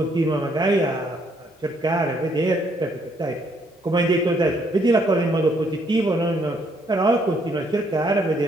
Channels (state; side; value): normal; both; correlation 0.69